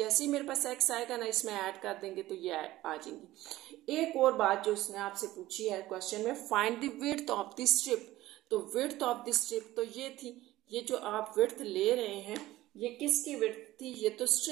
ही मेरे पास x आएगा ना, इसमें ऐड कर देंगे तो ये आ जाएंगी। एक और बात जो उसने आपसे पूछी है क्वेश्चन में, find the width of the strip. तो विड्थ ऑफ द स्ट्रिप तो ये थी, ये जो आप विड्थ ले रहे हैं ये किसकी विड्थ थी, ये तो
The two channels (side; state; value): left; quieter; 16.3 dB